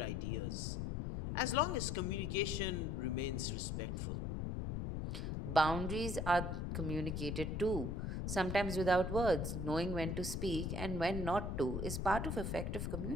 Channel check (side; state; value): left; noise; rumble, 2 dB below the sound